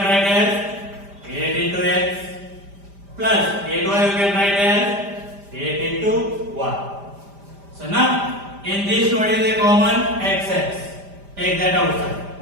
write as 8 into x plus 8y we can write as 8 into y. So now in these two what is the common? Xx. Take that outside.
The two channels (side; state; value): left; late; 5.0 ms